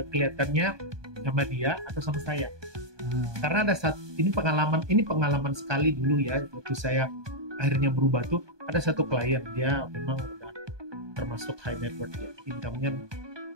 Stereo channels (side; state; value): left; late; 1.2 ms